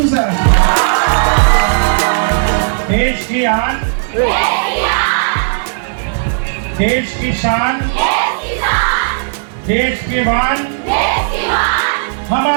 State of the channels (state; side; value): silent; left; digital silence